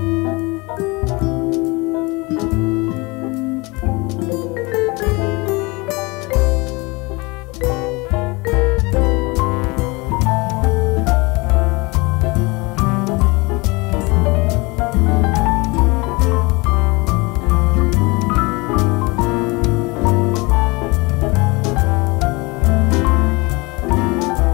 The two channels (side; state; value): right; quieter; 25.6 dB